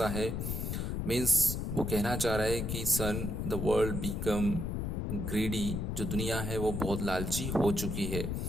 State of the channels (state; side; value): noise; left; rumble, 2 dB below the sound